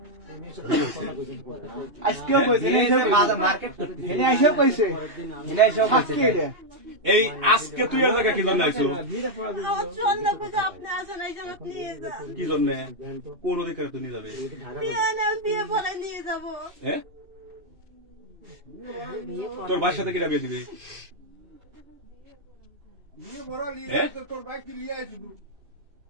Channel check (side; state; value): left; late; 2.8 ms